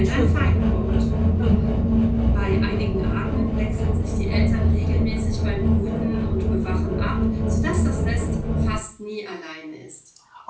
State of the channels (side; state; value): both; identical; correlation 1.00